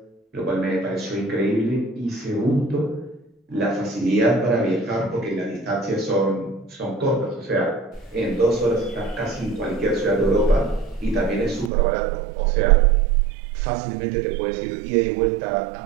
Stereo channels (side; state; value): left; drops out; at 11.7 s